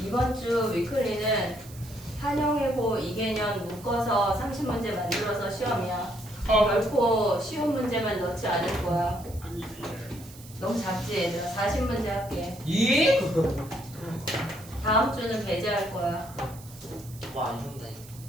이번 주 위클리는 한영해고 이개년 묶어서 30문제 만들어서 시험이야. 결코 쉬운 문제만 넣지 않을 거야. 너무 작지 얘들아. 40문제 할게. 예? 다음 주는 배제할 거야. 와, 이런다.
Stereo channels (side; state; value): right; noise; hiss, 19 dB below the sound